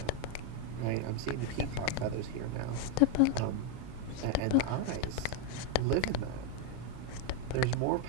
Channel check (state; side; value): different; both; correlation 0.02